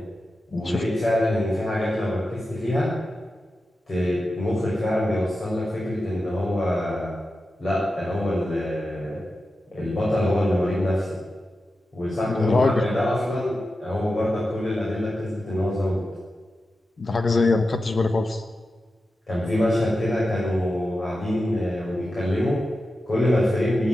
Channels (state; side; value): normal; both; correlation 0.91